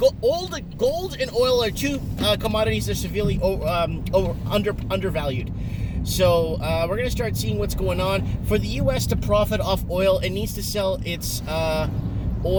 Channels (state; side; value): identical; both; correlation 1.00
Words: and oil are two commodities that are severely undervalued. So we're going to start seeing what's going on. For the U.S. to profit off oil, it needs to sell its